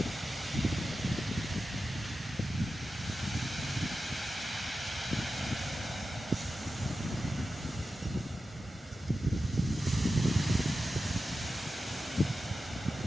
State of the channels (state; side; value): normal; both; correlation 0.92